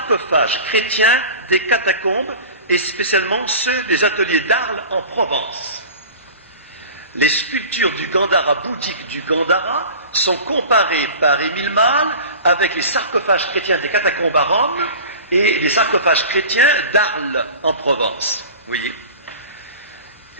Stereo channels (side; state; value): both; inverted; correlation -0.38